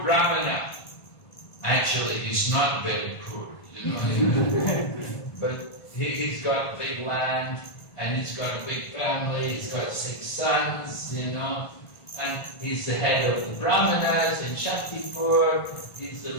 Brahmana. Actually, he's not very poor, but he's got big land, and he's got a big family, he's got 6 sons, and he's the head of the Brahmanas in Shaktipur, he's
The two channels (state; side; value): late; right; 1.5 ms